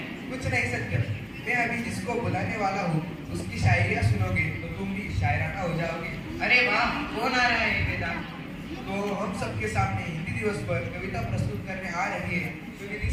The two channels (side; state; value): both; identical; correlation 1.00